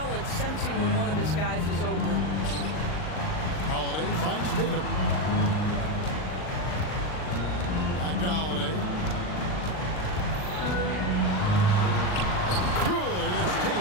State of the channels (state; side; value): late; right; 39 ms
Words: sensing when one of his guys is open. Holiday finds Tatum. Back to Holiday. Good. It's